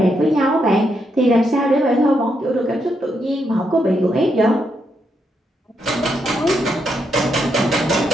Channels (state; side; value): normal; both; correlation 0.79